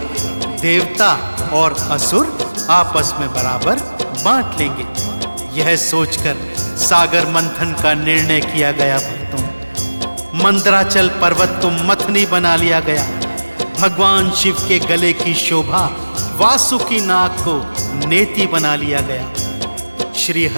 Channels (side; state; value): both; inverted; correlation -1.00